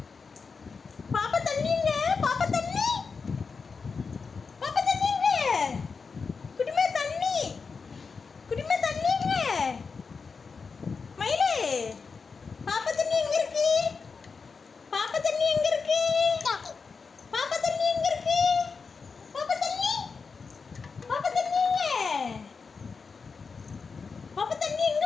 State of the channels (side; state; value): right; quieter; 5.0 dB